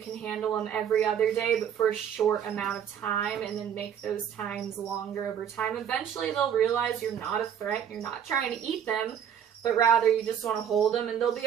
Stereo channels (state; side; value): quieter; left; 8.8 dB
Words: handle them every other day, but for a short amount of time, and then make those times longer over time. Eventually, they'll realize you're not a threat, you're not trying to eat them, but rather you just want to hold them, and they'll